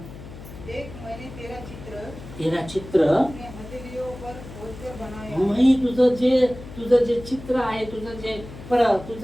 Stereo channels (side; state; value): left; noise; hum, 14 dB below the sound